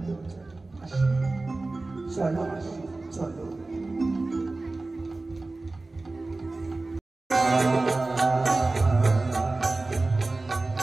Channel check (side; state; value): left; quieter; 3.2 dB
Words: চলো মাসি, চলো।